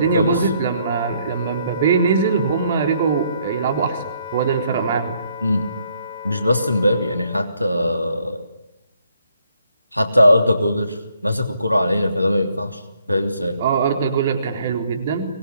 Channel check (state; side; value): inverted; both; correlation -0.69